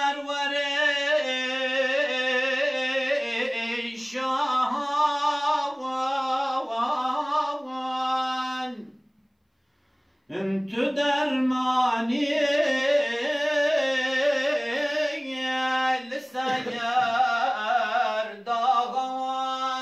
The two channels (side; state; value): both; identical; correlation 1.00